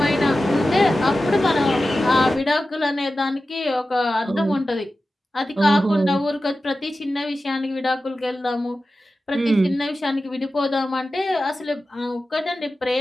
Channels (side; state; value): both; normal; correlation 0.94